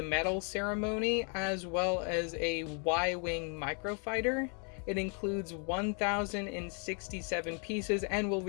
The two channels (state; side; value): quieter; right; 39.1 dB